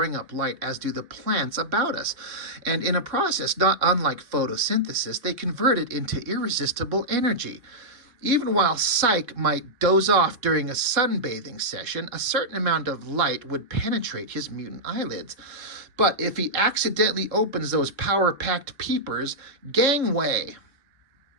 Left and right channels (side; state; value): left; late; 3.7 ms